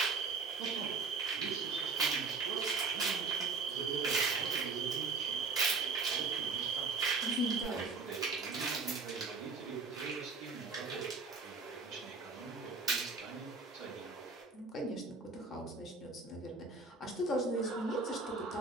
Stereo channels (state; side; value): quieter; left; 4.3 dB